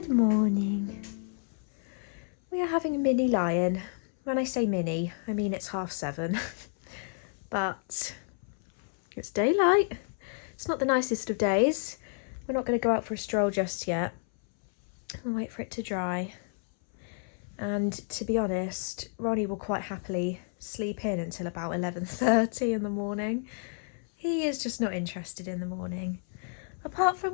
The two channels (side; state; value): right; silent; 57 dB below the other